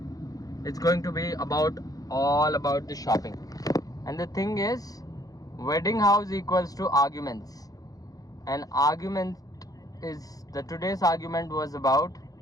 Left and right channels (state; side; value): late; right; 0.17 ms